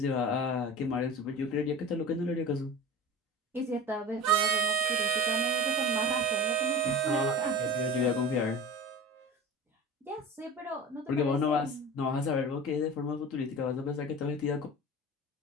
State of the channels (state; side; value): normal; both; correlation 0.34